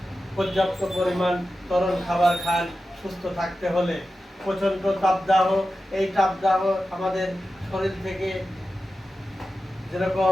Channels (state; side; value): normal; both; correlation 0.93